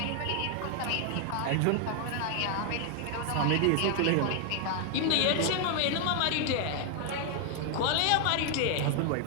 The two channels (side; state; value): both; different; correlation 0.00